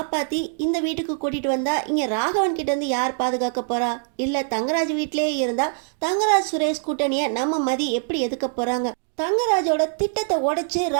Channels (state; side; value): silent; left; digital silence